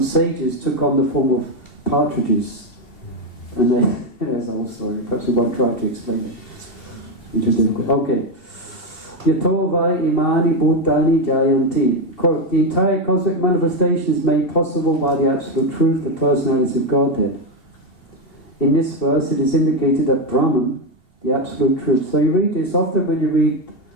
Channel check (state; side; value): late; right; 2.7 ms